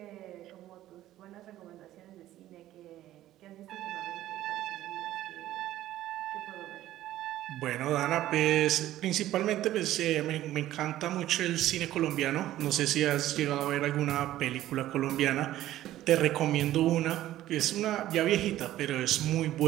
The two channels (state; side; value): quieter; left; 14.0 dB